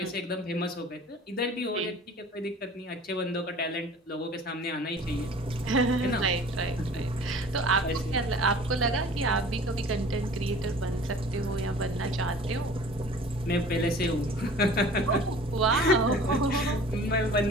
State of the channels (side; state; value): both; normal; correlation 0.45